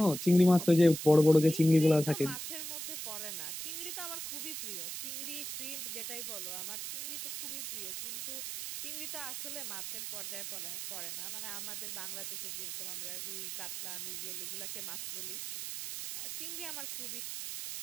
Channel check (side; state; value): right; noise; hiss, 6 dB below the sound